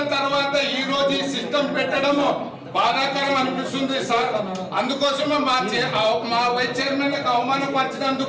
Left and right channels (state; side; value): identical; both; correlation 1.00